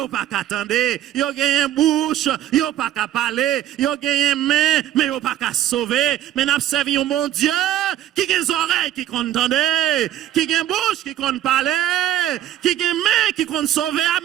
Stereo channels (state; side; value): quieter; left; 12.3 dB